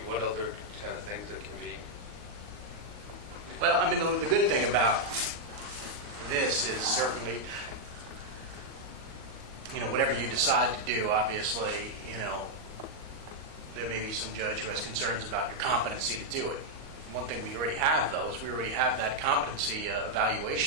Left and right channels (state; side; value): late; left; 39 ms